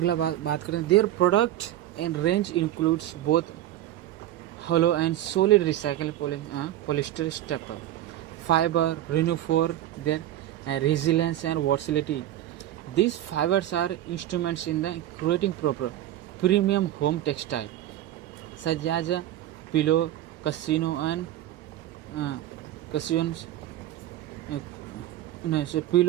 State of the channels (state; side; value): quieter; left; 13.1 dB